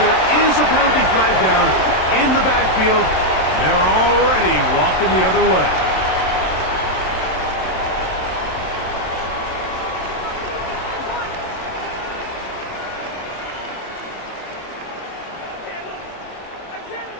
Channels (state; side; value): late; right; 27 ms